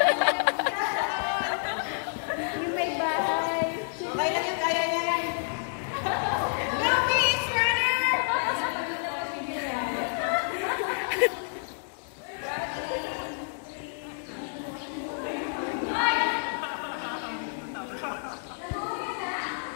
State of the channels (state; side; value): silent; right; 59 dB below the other